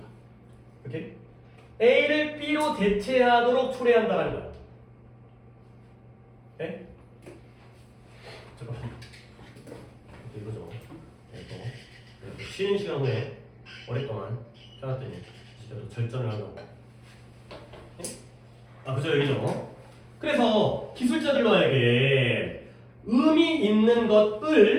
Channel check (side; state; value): both; identical; correlation 1.00